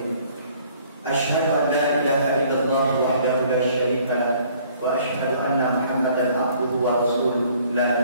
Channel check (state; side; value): inverted; both; correlation -0.58